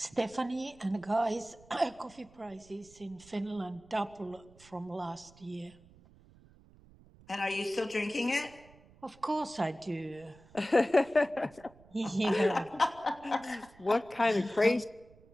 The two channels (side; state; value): right; noise; rumble, 25 dB below the sound